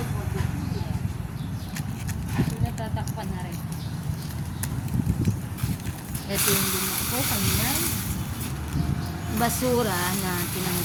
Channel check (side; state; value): both; identical; correlation 1.00